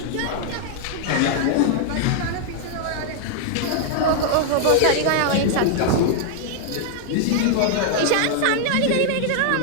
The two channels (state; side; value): different; both; correlation -0.01